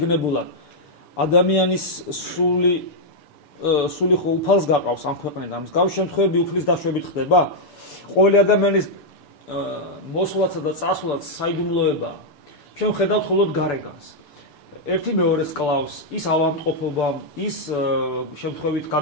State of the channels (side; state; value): right; late; 6.8 ms